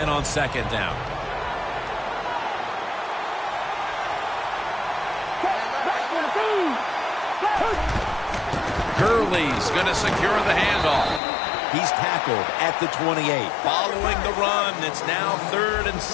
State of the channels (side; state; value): right; drops out; at 11.2 s